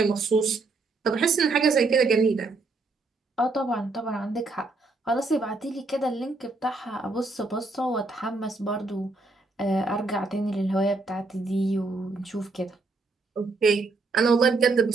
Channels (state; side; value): quieter; left; 3.5 dB